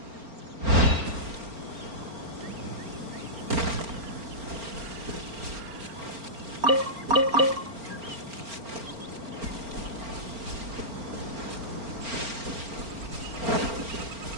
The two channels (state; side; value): late; left; 4.4 ms